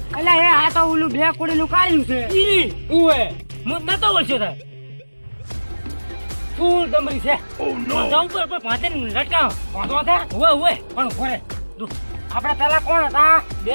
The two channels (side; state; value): both; inverted; correlation -1.00